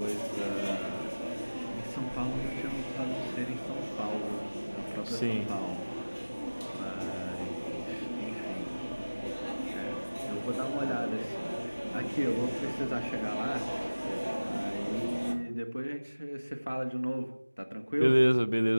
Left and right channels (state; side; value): inverted; both; correlation -1.00